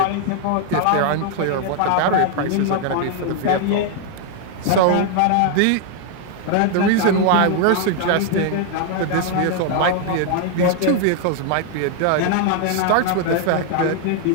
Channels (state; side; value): different; both; correlation 0.00